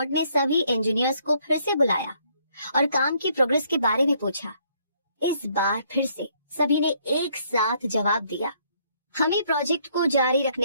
ने सभी इंजीनियर्स को फिर से बुलाया और काम की प्रोग्रेस के बारे में पूछा। इस बार फिर से सभी ने एक साथ जवाब दिया, हमें प्रोजेक्ट को जारी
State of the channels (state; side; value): inverted; both; correlation -0.67